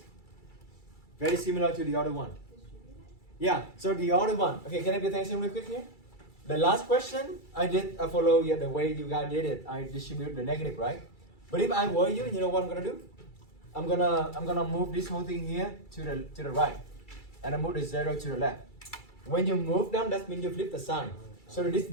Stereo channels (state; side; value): late; right; 2.3 ms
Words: Very similar to the other one. Yeah, so the other one. Okay, can I pay attention real quick here? The last question I follow the way you guys did it. I distribute the negative, right? But if I were you, you know what I'm gonna do? I'm gonna move this whole thing here to the right, and I move the 0 to the left. When you move them, that means you flip the sign. So this